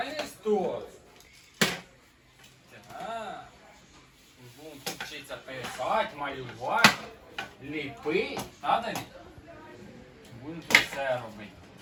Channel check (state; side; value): identical; both; correlation 1.00